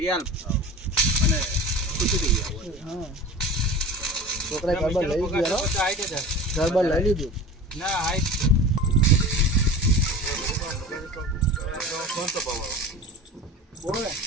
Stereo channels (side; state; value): both; normal; correlation 0.35